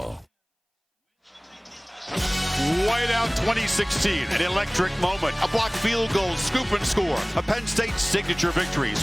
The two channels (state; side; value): identical; both; correlation 1.00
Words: Whiteout 2016, an electric moment, a blocked field goal, scoop and score, a Penn State signature victory,